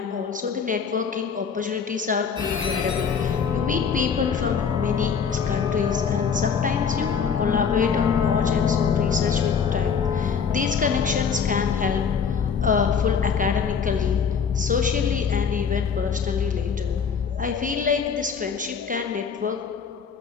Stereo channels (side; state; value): right; quieter; 6.5 dB